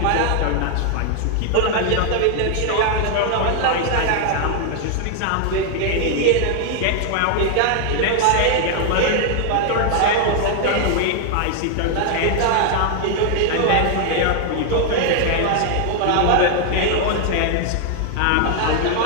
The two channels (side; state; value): both; different; correlation 0.00